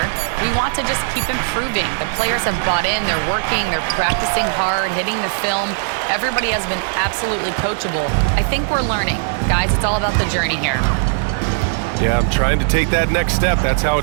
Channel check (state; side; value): silent; left; digital silence